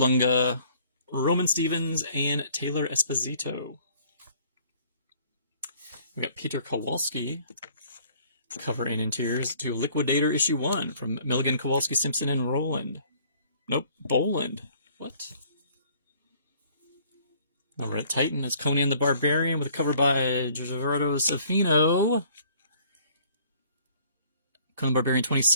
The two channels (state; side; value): inverted; both; correlation -0.58